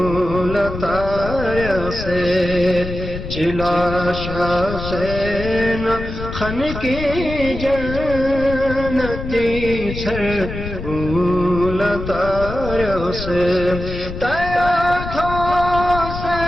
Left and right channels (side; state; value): left; noise; rumble, 8 dB below the sound